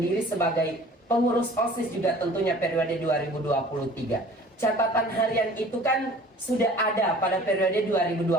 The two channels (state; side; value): normal; both; correlation 0.48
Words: sebagai pengurus OSIS juga tentunya periode 2023. Catatan harian itu kan sudah ada pada periode